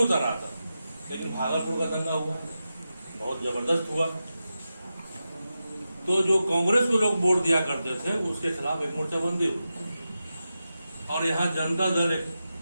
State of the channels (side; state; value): both; inverted; correlation -0.91